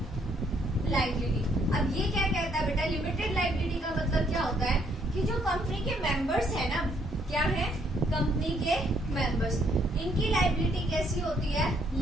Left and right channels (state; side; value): normal; both; correlation 0.69